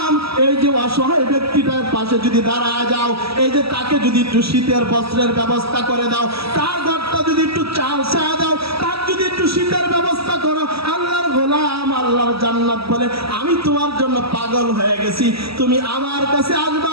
এই যে অসহায় ব্যক্তিটার পাশে যদি দাঁড়ায় যাও, এই যে তাকে যদি একটু শীতের বস্ত্রের ব্যবস্থা করে দাও, তার ঘরটা যদি একটু চাল ছায়া দাও, তার যদি একটু শীতের ব্যবস্থা করো, আল্লাহর গোলাম আল্লাহর জান্নাত বলে আমি তোমার জন্য পাগল হয়ে গেছি, তুমি আমার কাছে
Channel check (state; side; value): late; left; 0.76 ms